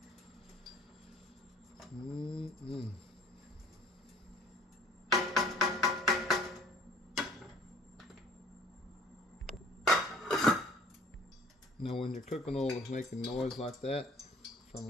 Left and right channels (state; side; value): normal; both; correlation 0.53